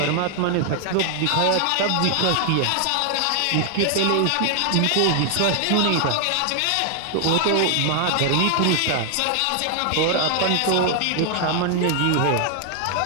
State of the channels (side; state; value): both; different; correlation 0.00